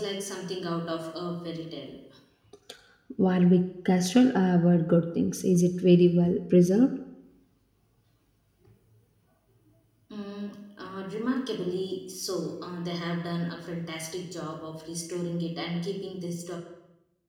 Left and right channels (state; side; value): identical; both; correlation 1.00